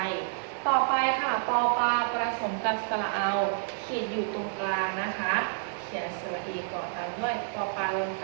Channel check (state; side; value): silent; left; digital silence